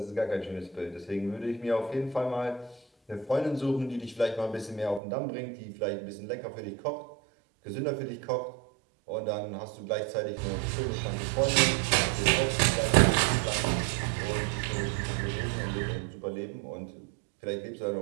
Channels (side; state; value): left; drops out; at 5.0 s